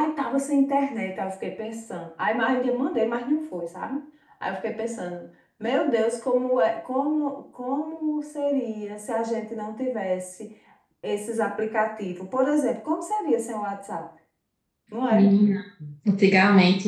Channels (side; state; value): both; identical; correlation 1.00